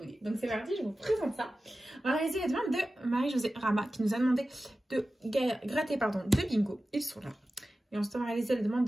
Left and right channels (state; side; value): normal; both; correlation 0.94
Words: Donc c'est parti, je vous présente ça. On va réaliser la demande de Marie-Josée Rama qui nous a demandé de gratter deux bingos. Ils sont là. Et ensuite, on va réaliser la demande